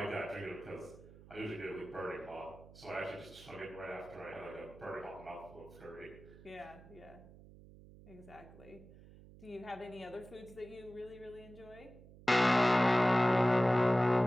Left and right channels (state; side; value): noise; right; hum, 20 dB below the sound